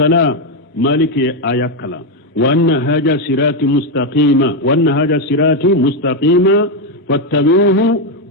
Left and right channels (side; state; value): both; normal; correlation 0.05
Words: مالك آيكلا وأن هذا صراطي مستقيما فاتبعوه